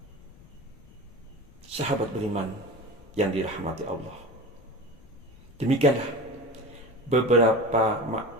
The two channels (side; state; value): left; noise; rumble, 23 dB below the sound